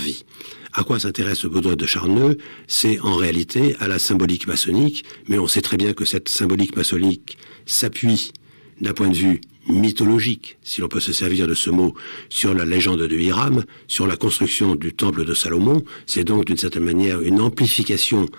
À quoi s'intéresse Baudouin de Charneux? C'est en réalité à la symbolique maçonnique, mais on sait très bien que cette symbolique maçonnique s'appuie d'un point de vue mythologique, si l'on peut se servir de ce mot, sur la légende de Hiram, sur la construction du temple de Salomon. C'est donc d'une certaine manière une amplification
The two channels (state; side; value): inverted; both; correlation -1.00